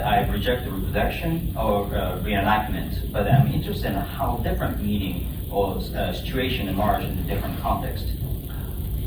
I reject the reproduction or reenactment, but I'm interested in how different meaning or situation emerge in a different context.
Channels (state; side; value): identical; both; correlation 1.00